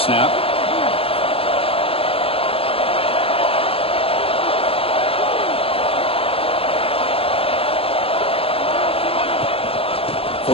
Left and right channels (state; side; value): late; right; 0.27 ms